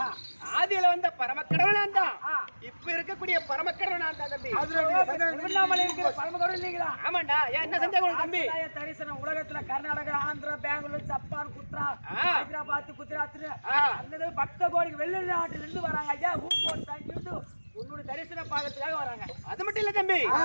ஆதியில வந்த பரமக்கடவுள் நான் தான், இப்ப இருக்கக்கூடிய பரமக்கடவுள் நான் தான் தம்பி. திருவண்ணாமலை இருக்கிற பரமக்கடவுள் நீங்களா? ஆமாண்டா. ஏன் என்ன சந்தேகம் தம்பி? தரிசனம் உலகத்துல கர்நாடகா, ஆந்திரா, பெங்களூர், ஜப்பான், ஹைதராபாத், குஜராத் பக்த கோடிக்கு வெளிநாட்டுல இருந்து வராங்க ஐயா. உன்னுடைய தரிசன பாகத்துக்காக வராங்க. அது மட்டும் இல்ல தம்பி,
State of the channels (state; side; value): inverted; both; correlation -1.00